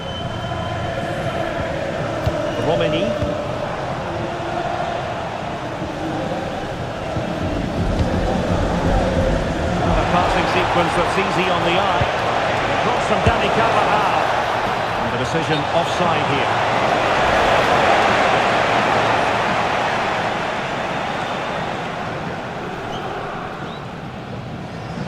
Romani. A passing sequence that's easy on the eye. Cross from Dani Carvajal. And the decision offside here.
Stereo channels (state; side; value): identical; both; correlation 1.00